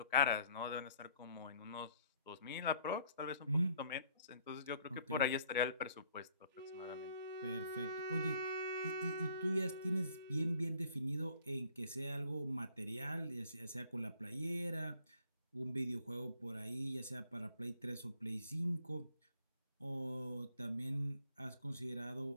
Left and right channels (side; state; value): both; inverted; correlation -0.60